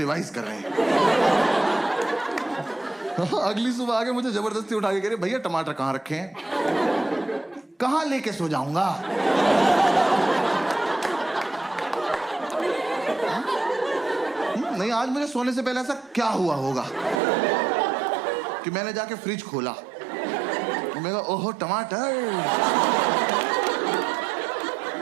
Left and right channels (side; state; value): left; drops out; at 17.2 s